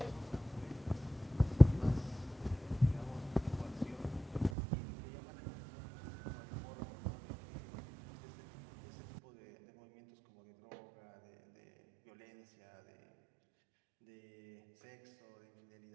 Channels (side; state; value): left; drops out; at 4.5 s